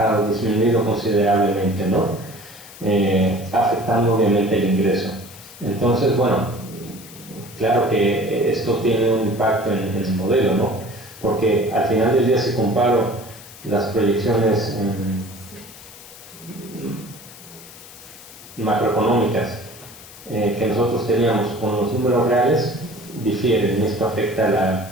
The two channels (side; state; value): left; noise; hiss, 18 dB below the sound